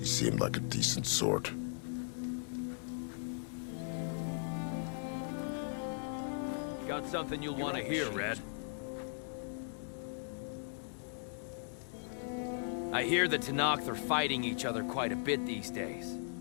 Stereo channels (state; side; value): silent; right; digital silence